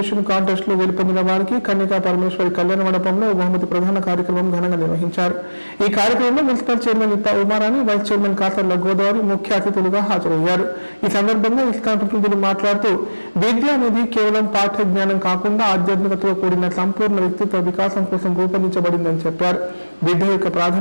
కాంటెస్ట్ లో గెలుపొందిన వారికి కన్యకా పరమేశ్వరి కళ్యాణ మండపంలో బహుమతి ప్రధాన కార్యక్రమం ఘనంగా నిర్వహించారు. ఈ కార్యక్రమంలో municipal chairman Itta Umarani, vice chairman Kasarla Godavari ముఖ్య అతిథులుగా హాజరయ్యారు. ఈ సందర్భంగా ఇస్కాన్ ప్రతినిధులు మాట్లాడుతూ విద్య అనేది కేవలం పాఠ్య జ్ఞానం కాకుండా ఆధ్యాత్మికతతో కూడిన సంపూర్ణ వ్యక్తిత్వ వికాసం కోసం రూపొందించబడిందని చెప్పారు. విద్య యొక్క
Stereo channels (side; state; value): both; inverted; correlation -1.00